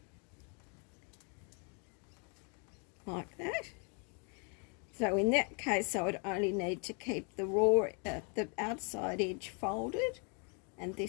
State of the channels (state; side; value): quieter; right; 37.3 dB